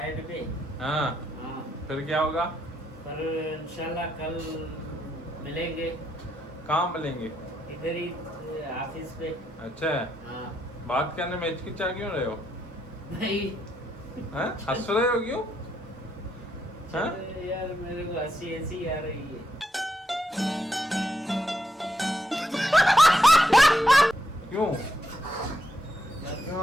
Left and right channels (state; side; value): normal; both; correlation 0.80